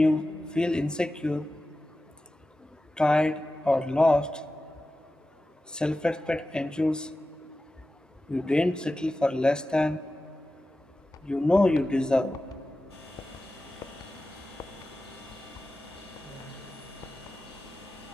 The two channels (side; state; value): both; normal; correlation 0.94